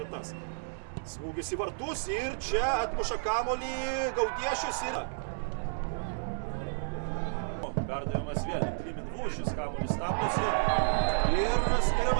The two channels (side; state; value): left; silent; 57 dB below the other